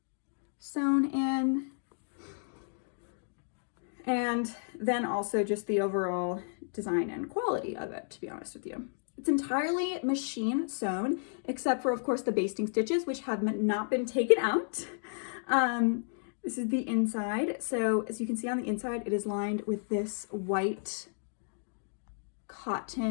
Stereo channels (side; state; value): right; silent; digital silence